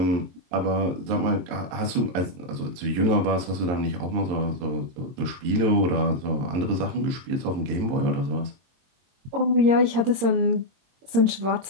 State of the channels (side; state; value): left; late; 22 ms